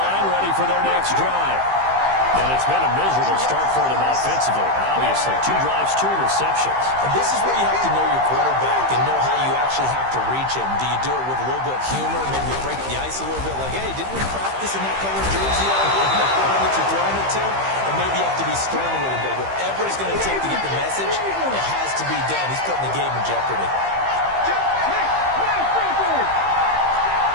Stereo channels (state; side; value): late; left; 15 ms